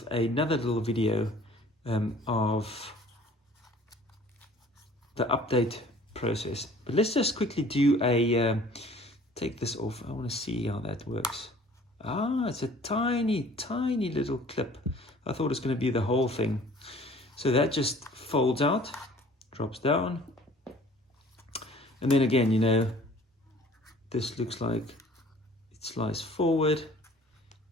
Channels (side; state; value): both; normal; correlation 0.51